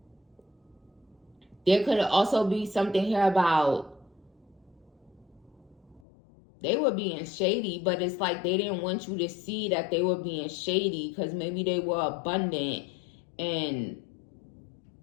There could also be something here about they were being shady, but it's like they didn't want you to see that they were being shady because maybe they were abundant and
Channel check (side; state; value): right; drops out; at 6.1 s